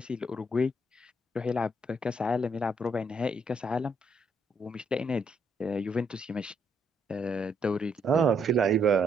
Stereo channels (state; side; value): normal; both; correlation 0.73